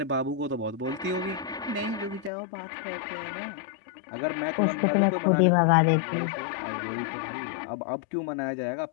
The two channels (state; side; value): drops out; right; at 2.3 s